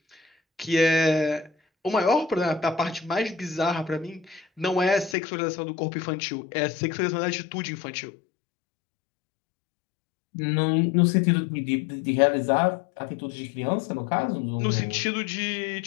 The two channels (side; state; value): right; drops out; at 5.2 s